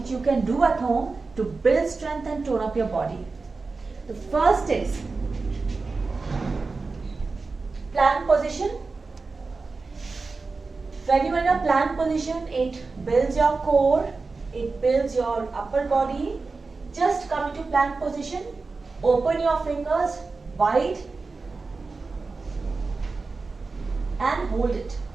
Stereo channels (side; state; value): left; quieter; 4.0 dB